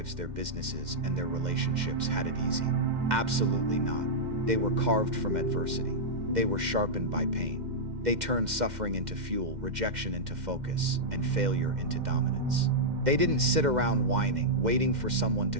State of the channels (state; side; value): late; left; 2.1 ms